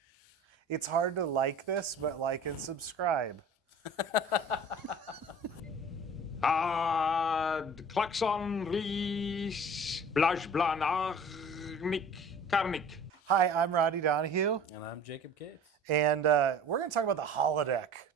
It's hard to like this, but like and subscribe. Klaxon Ries Blaj Blanarnik Karnik. Hi, I'm Roddy Donahue. And I'm Jacob Case. And we're going to talk about the holodeck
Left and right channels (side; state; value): both; normal; correlation 0.44